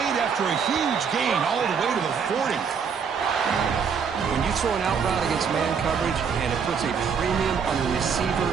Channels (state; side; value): quieter; left; 6.4 dB